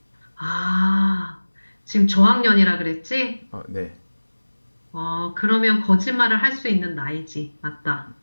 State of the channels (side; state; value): both; inverted; correlation -1.00